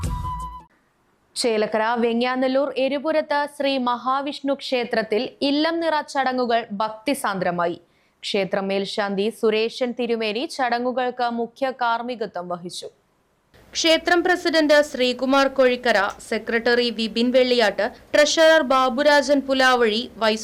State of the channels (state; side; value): identical; both; correlation 1.00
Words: ചേലക്കര വെങ്ങ്യാനല്ലൂർ എരുപുരത്ത് ശ്രീ മഹാവിഷ്ണു ക്ഷേത്രത്തിൽ ഇല്ലം നിറ ചടങ്ങുകൾ ഭക്തിസാന്ദ്രമായി. ക്ഷേത്ര മേൽശാന്തി സുരേഷൻ തിരുമേനി ചടങ്ങുകൾക്ക് മുഖ്യ കാർമ്മികത്വം വഹിച്ചു. ക്ഷേത്രം president Sreekumar Kozhikkara, secretary Vipin Velliyatt, treasurer Baburajan Pulavazhi,